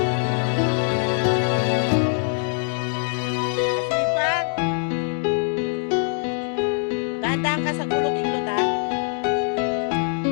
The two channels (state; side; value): silent; right; 57 dB below the other